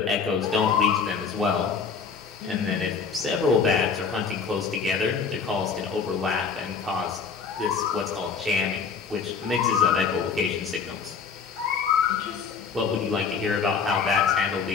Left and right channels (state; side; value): quieter; right; 5.7 dB